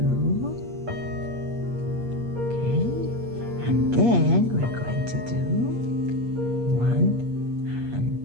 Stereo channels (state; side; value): late; left; 8.4 ms